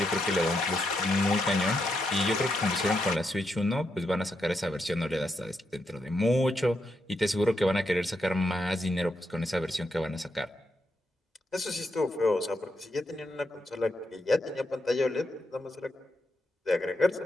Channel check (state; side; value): normal; both; correlation 0.81